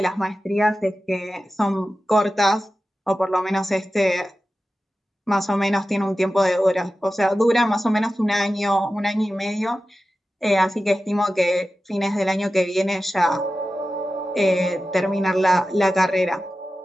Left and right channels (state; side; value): normal; both; correlation 0.94